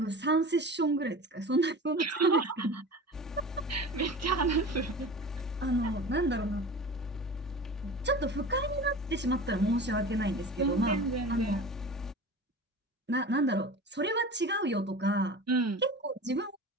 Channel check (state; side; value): normal; both; correlation 0.35